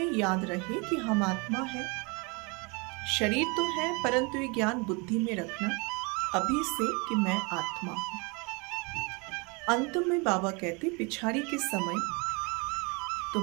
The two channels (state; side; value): quieter; left; 30.2 dB